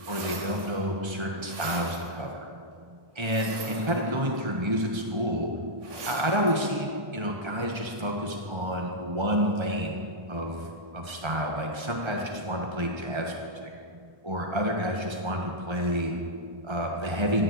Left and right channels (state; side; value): late; left; 1.3 ms